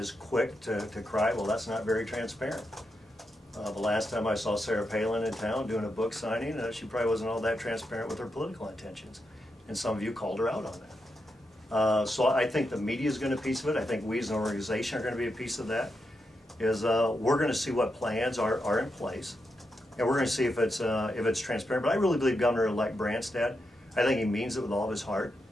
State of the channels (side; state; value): both; normal; correlation 0.85